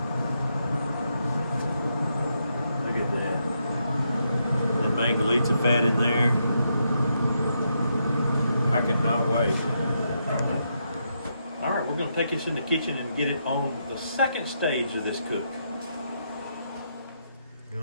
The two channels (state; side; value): inverted; both; correlation -0.80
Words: Look at that. That mangalita fat in there. I cannot wait. All right, we're going to take this in the kitchen and get it on the second stage of this cook.